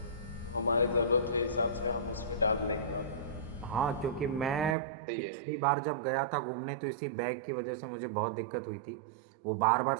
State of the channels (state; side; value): drops out; left; at 4.8 s